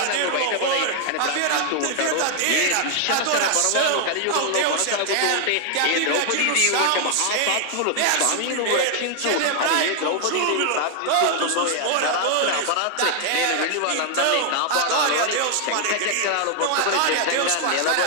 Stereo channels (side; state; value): both; different; correlation 0.00